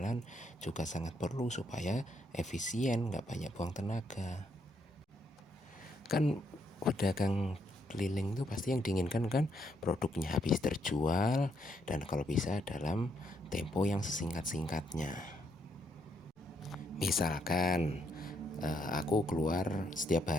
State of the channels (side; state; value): both; normal; correlation 0.75